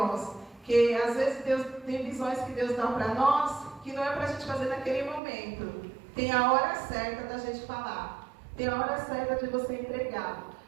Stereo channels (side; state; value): left; drops out; at 5.2 s